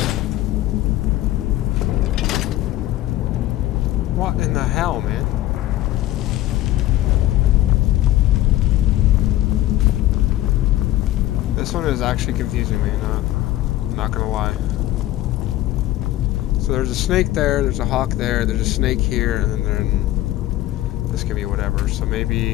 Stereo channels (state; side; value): quieter; right; 15.1 dB